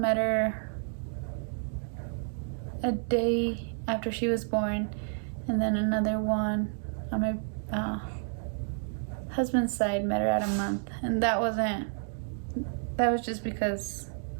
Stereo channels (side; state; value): left; silent; digital silence